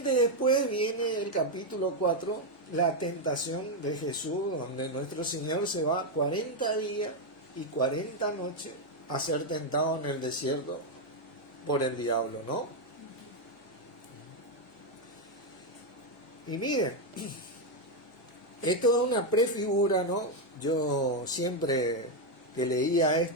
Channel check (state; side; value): normal; both; correlation 0.03